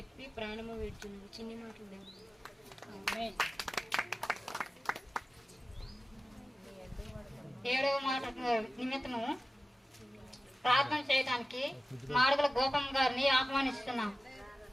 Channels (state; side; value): normal; both; correlation 0.95